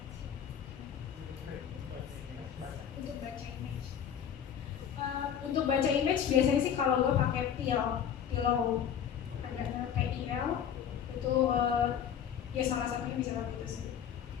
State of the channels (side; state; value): right; quieter; 8.7 dB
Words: Untuk baca image. Untuk baca image biasanya sih kalau lo pakai Pillow, ada PIL itu ya salah satunya bisa pakai itu sih.